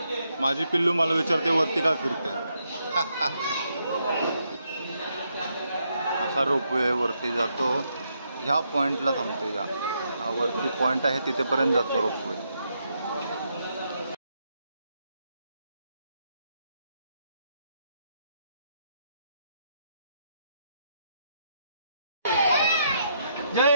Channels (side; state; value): both; inverted; correlation -0.77